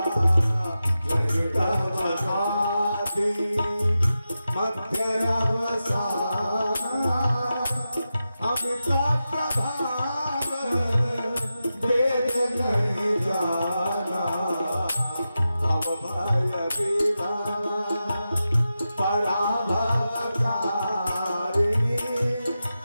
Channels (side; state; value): both; inverted; correlation -0.91